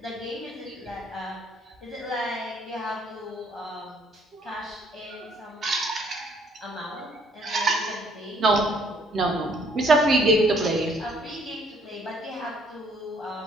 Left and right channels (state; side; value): normal; both; correlation 0.63